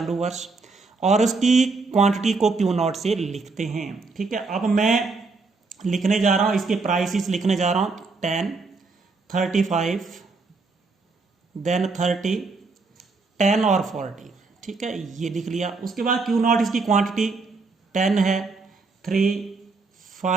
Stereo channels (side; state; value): left; quieter; 4.0 dB